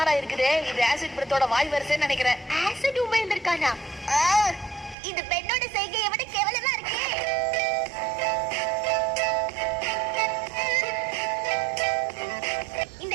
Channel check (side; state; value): left; drops out; at 5.0 s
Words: இருக்குதே, இது ஆசிட் பிரத்தோட வாய் வரிசைன்னு நினைக்கிறேன். ஆசிட் உமிழ்ந்திருக்கானா? இது பெண்ணோட செய்கையை விட கேவலமா இருக்கு. இந்த